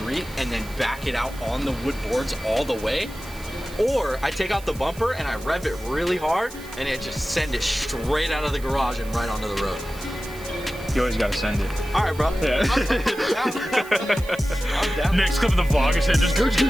and then back it out on the wood boards all the way. Or I take out the bumper and I rev it really hard and it just send it straight out of the garage and right onto the road. You always gotta send it. All right, bro. Yeah. I'm down. Next clip of the vlog is just gooch.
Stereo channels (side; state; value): right; noise; hiss, 19 dB below the sound